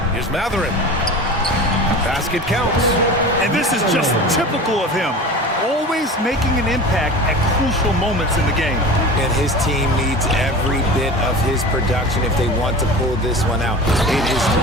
Here's Mathurin. Basket counts. And this is just typical of him. Always making an impact at crucial moments in the game. And his team needs every bit of his production if they want to pull this one out. It is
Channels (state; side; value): normal; both; correlation 0.34